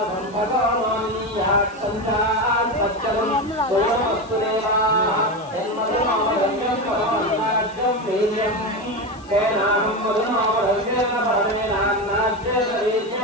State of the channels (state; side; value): noise; left; hiss, 26 dB below the sound